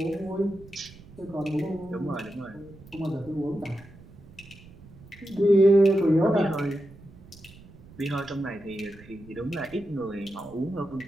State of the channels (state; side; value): noise; right; rumble, 21 dB below the sound